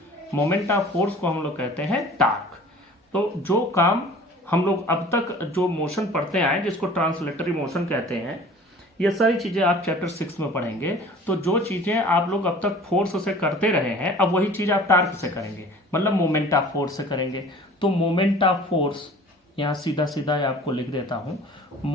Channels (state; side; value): normal; both; correlation 0.45